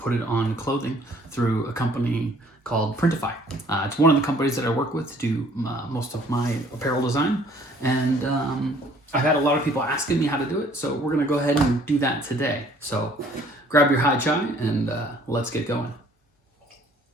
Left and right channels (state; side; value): normal; both; correlation 0.58